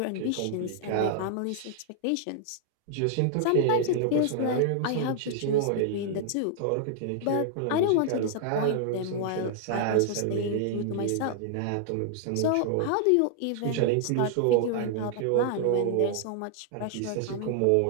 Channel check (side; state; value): both; different; correlation -0.01